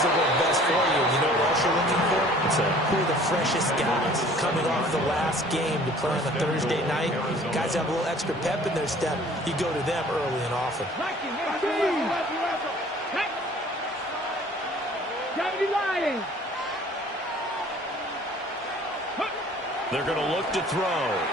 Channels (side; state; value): both; normal; correlation 0.51